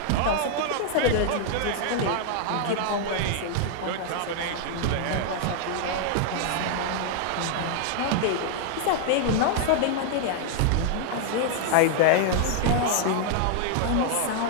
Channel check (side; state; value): both; different; correlation 0.00